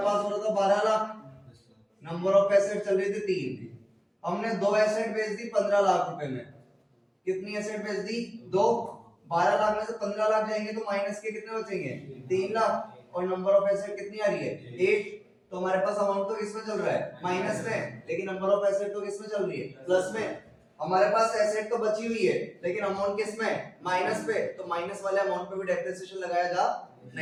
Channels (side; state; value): both; identical; correlation 1.00